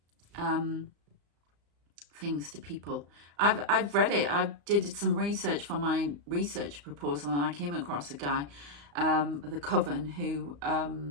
things to people. I've read it. I did some research for my research proposal, and I came across a guy, the coven, who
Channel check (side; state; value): left; late; 35 ms